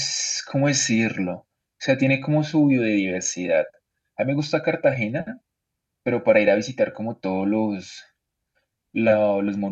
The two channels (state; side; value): identical; both; correlation 1.00